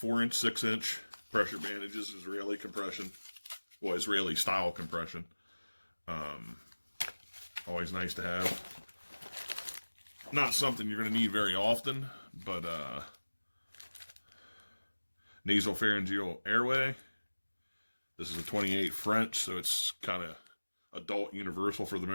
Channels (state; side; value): inverted; both; correlation -1.00